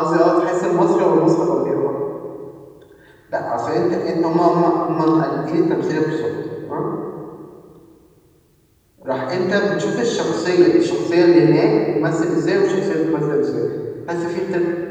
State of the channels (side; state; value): both; identical; correlation 1.00